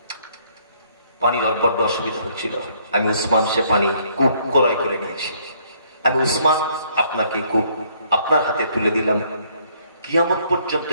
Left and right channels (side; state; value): both; inverted; correlation -0.66